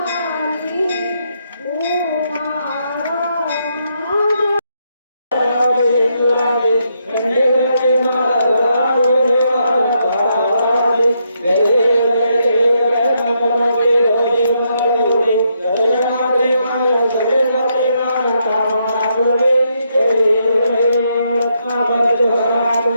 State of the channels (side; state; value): both; inverted; correlation -0.78